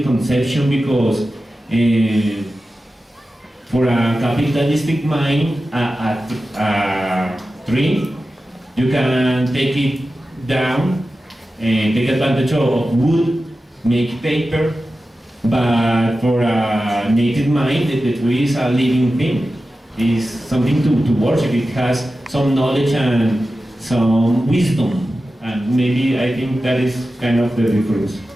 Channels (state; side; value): normal; both; correlation 0.93